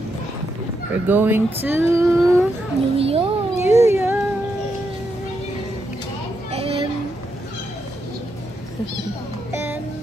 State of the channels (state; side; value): normal; both; correlation 0.82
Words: We're going to New York. New York.